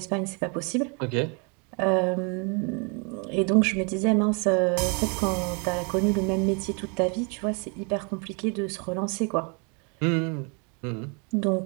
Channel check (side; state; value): left; quieter; 35.3 dB